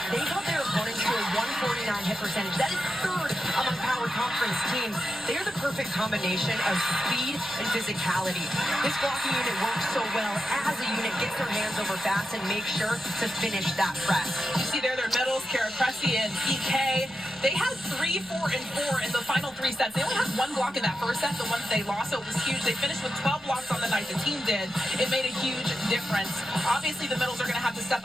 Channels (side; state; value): right; noise; rumble, 28 dB below the sound